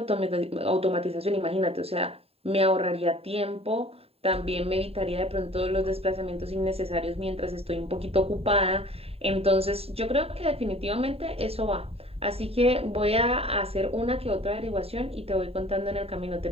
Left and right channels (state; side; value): late; left; 0.29 ms